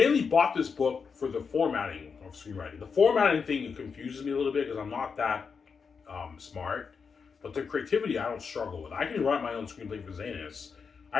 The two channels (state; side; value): quieter; right; 5.7 dB